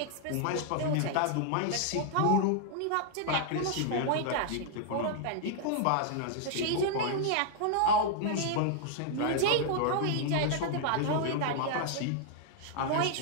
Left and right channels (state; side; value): different; both; correlation 0.00